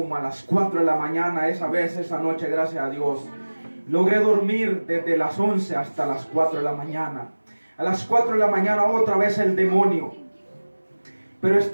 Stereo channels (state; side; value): inverted; both; correlation -1.00